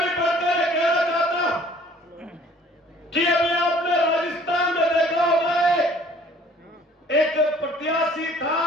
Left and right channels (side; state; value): both; normal; correlation 0.54